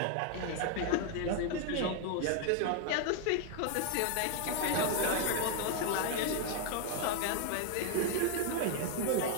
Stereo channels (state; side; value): different; both; correlation 0.00